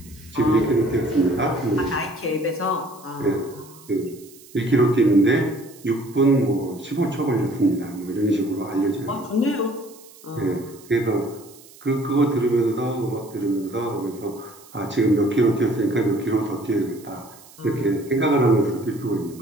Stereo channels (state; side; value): noise; right; hiss, 23 dB below the sound